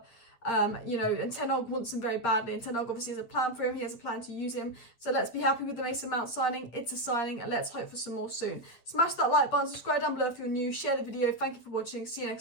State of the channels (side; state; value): right; late; 8.8 ms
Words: You know, and Ten Hag wants him very badly, and Ten Hag obviously has a plan for him. He has a plan to use him. So let's be happy with the Mason Mount signing. It's a signing, and let's hope for some more soon. Smash that like button, subscribe down below if you're new, share the video. Thank you for watching. See you